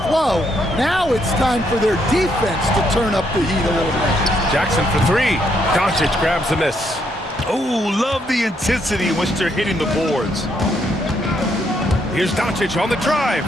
flow. Now it's time for their defense to turn up the heat a little bit. Jackson for three. Doncic grabs the miss. Oh, love the intensity in which they're hitting the boards. Here's Doncic on the drive.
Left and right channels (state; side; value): normal; both; correlation 0.74